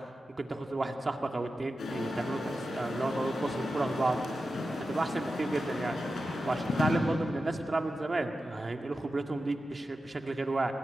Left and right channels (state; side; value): normal; both; correlation 0.91